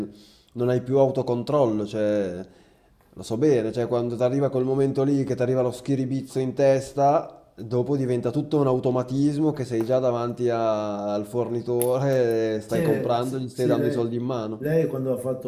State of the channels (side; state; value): both; identical; correlation 1.00